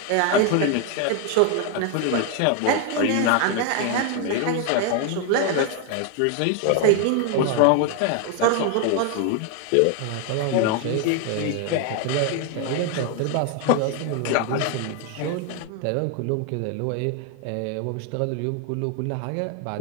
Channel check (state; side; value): different; both; correlation 0.01